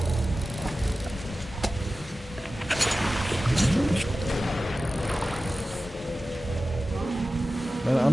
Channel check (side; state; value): both; normal; correlation 0.95